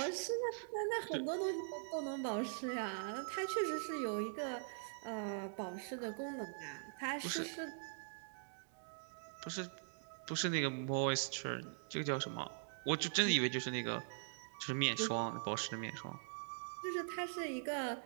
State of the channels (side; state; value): left; silent; digital silence